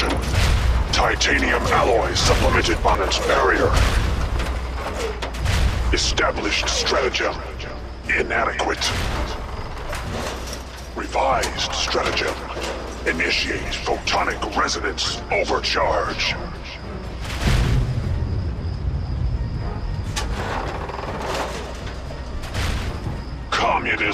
titanium alloy supplemented by its barrier. Established stratagem: inadequate. Revised stratagem: initiate photonic resonance overcharge.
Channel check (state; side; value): identical; both; correlation 1.00